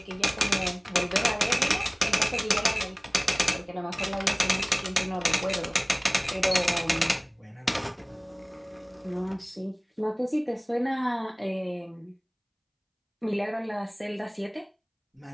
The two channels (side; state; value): both; identical; correlation 1.00